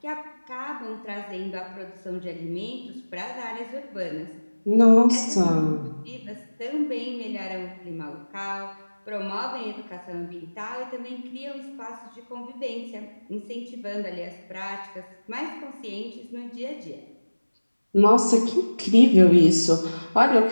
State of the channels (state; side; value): inverted; both; correlation -1.00